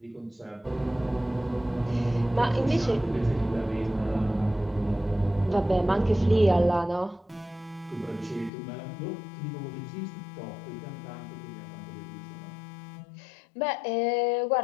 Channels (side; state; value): right; drops out; at 8.5 s